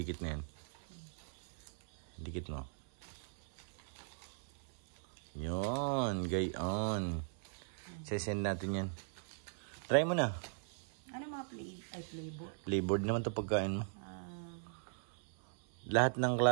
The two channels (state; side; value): silent; left; 51 dB below the other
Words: na yan. Dikit mo. Yun, gayon. Sesend natin yan. Try mo na. Ano mga flavor? Flavored naman to pagkain mo. Lahat ng